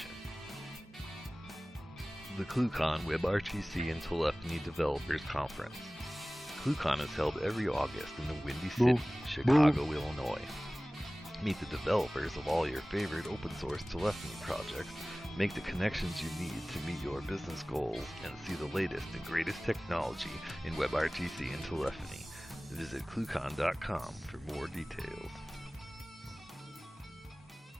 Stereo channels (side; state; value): both; normal; correlation 0.98